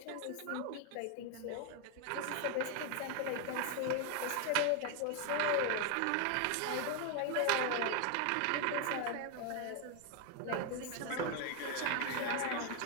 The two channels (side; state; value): both; different; correlation 0.01